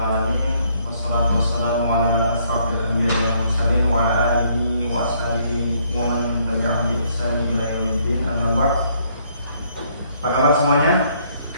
Wassalatu wassalamu ala asrofil anbiya'i wal mursalin wa ala alihi wa ashabihi wa man tabi'ahum bi ihsan ila yaumiddin. Amma ba'd. Apa kabar semuanya?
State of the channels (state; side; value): inverted; both; correlation -0.67